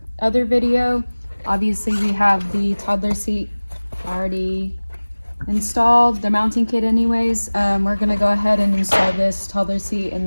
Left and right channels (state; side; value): inverted; both; correlation -1.00